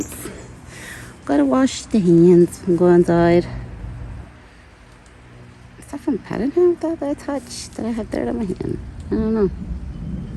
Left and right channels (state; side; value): identical; both; correlation 1.00